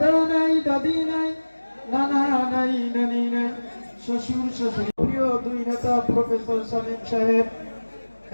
নাই, দাদি নাই, নানা নাই, নানি নাই, শ্বশুর শাশুড়ি। প্রিয় দুই নেতা প্রফেসর সালিম সাহেব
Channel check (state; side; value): inverted; both; correlation -1.00